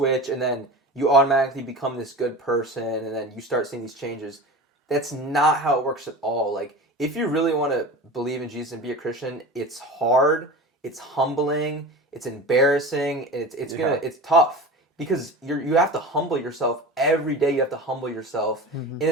and then you automatically become this good person and then you start seeing these changes. That's not how it works at all. Like if you really want to believe in Jesus and be a Christian, it's hard, it's humbling, it's embarrassing, it's tough. Because you have to humble yourself every day. You have to humble yourself, and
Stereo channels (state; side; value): normal; both; correlation 0.32